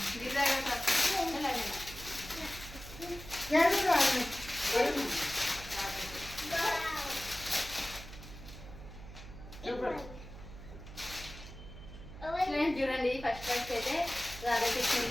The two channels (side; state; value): right; noise; hum, 14 dB below the sound